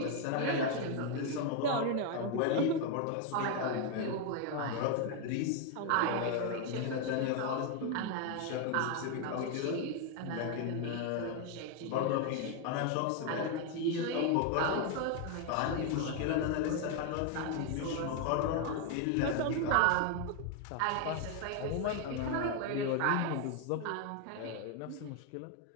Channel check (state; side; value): different; both; correlation 0.01